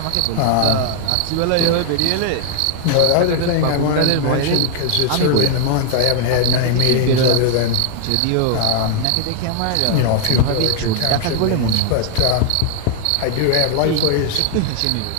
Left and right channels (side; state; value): both; different; correlation 0.00